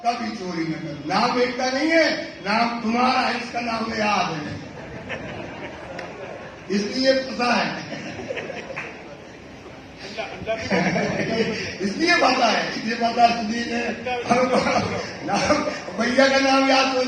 कभी चोरी न करो। नाम एकता नहीं है, नाम तुम्हारा है, इसका नाम याद है, इसलिए पता है इसलिए पता है, इसलिए पता इसलिए नाम भैया का नाम याद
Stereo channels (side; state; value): both; identical; correlation 1.00